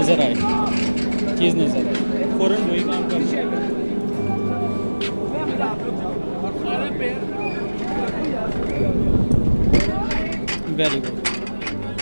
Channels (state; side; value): inverted; both; correlation -1.00